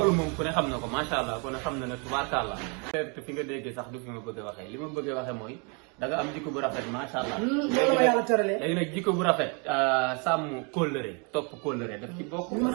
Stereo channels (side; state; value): left; quieter; 34.4 dB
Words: moom ku ne xam na ko macha allah ku ne xam na ne tubaarkàlla te fi nga déggee sax du fi ma bëgg a waxee li ma bëgg a waxee mooy da nga am jikko bu rafet macha allah loolu ma yàlla tëralee léegi nag jikko bu rafet sàmm kóllëre topp kóllëre daf ci bokk li ma